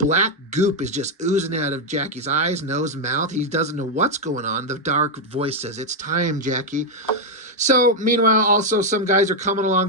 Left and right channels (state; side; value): normal; both; correlation 0.01